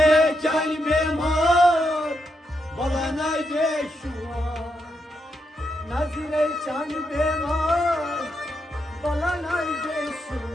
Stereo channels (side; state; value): both; normal; correlation 0.82